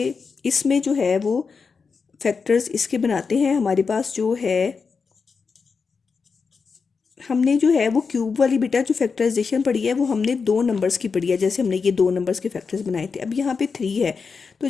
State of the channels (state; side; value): quieter; right; 5.2 dB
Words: इसमें जो है वो फैक्टर्स इसके बनाते हैं। हमारे पास जो है हमने जो है वो क्यूब वाली बेटा जो फैक्टराइजेशन पढ़ी है वो हमने 2 नंबर्स की पढ़ी है। जैसे हमने ये 2 नंबर्स के फैक्टर्स बनाए थे। अब यहाँ पे 3 है, तो